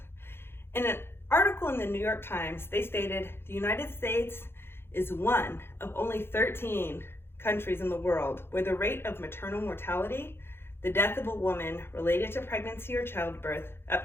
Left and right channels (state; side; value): late; right; 0.11 ms